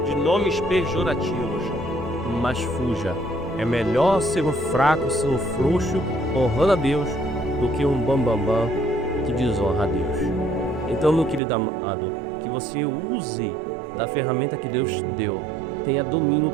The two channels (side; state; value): left; drops out; at 11.4 s